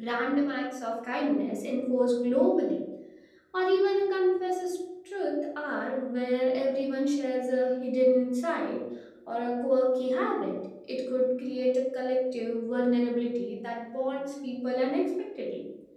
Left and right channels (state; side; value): identical; both; correlation 1.00